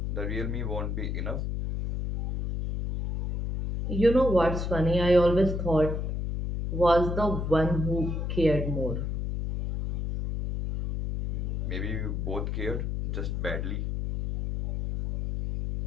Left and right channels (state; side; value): noise; left; hum, 2 dB below the sound